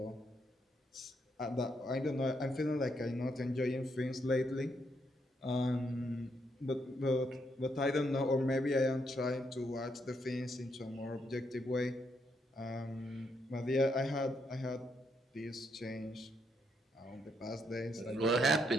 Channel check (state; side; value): normal; both; correlation 0.77